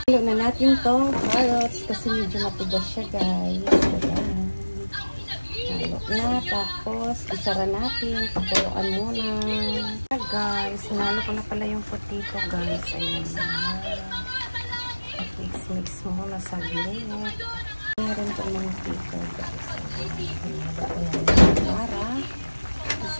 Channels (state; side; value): inverted; both; correlation -1.00